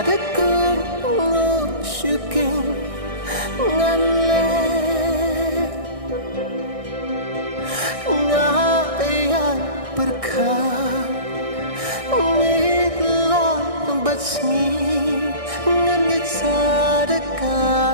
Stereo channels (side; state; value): left; late; 1.6 ms